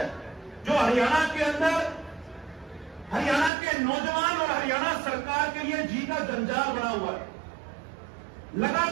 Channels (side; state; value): left; drops out; at 3.5 s